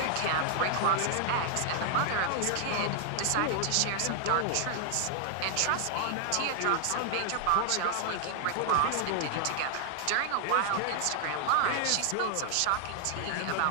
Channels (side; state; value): both; different; correlation 0.00